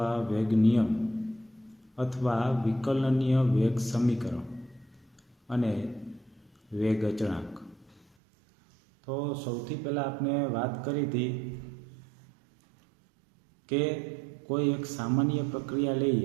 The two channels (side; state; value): left; drops out; at 8.1 s